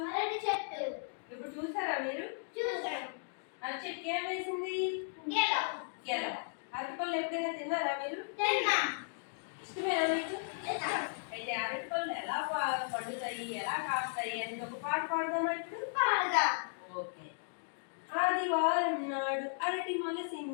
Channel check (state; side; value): silent; right; digital silence